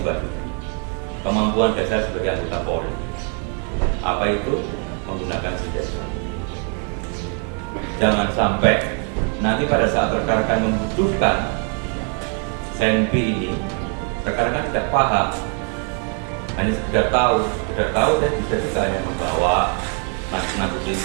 kemampuan dasar sebagai anggota Polri. Apa itu? Menggunakan senjata. Jangan sampai nanti pada saat rekan-rekan membutuhkan senpi ini, rekan-rekan tidak paham, hanya sekedar tahu dan bisa juga yang membawa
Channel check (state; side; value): quieter; left; 40.0 dB